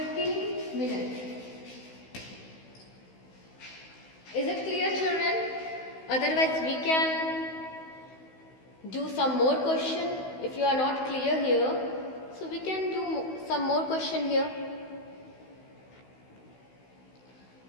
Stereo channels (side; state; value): right; late; 16 ms